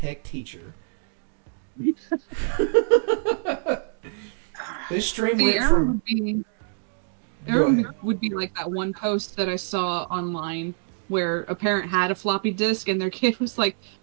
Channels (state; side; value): silent; left; digital silence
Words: teacher. This stream went from. Go ahead. Would be like that one post that I saw online where a parent had a floppy disk and their kid was like,